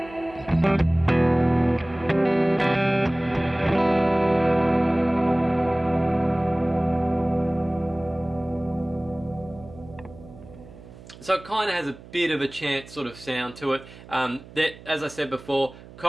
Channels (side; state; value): right; noise; hum, 19 dB below the sound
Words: So it kind of has a bit of a chant sort of sound to it. That, as I said before,